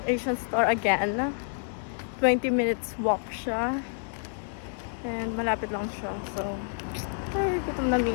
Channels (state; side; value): silent; right; digital silence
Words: Asian store again. 20 minutes walk siya. And malapit lang siya. So, ay, gutom na mi.